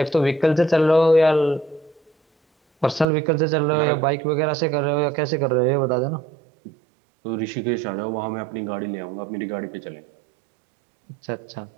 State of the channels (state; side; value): drops out; left; at 3.1 s